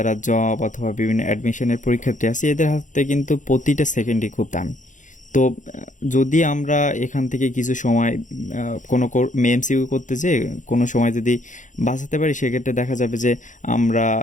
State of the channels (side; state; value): right; late; 0.37 ms